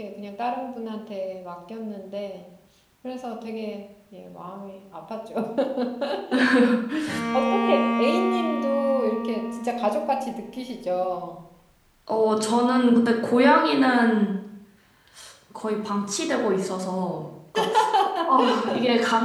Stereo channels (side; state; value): both; identical; correlation 1.00